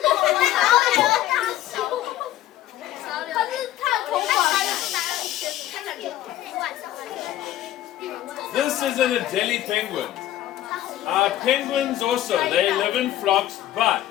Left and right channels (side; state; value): right; quieter; 13.5 dB